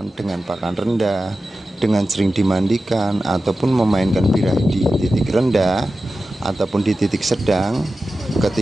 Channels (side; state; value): both; normal; correlation 0.93